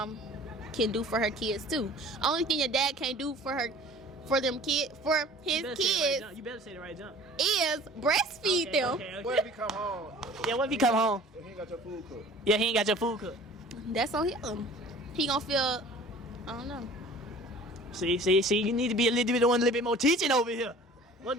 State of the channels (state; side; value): normal; both; correlation 0.47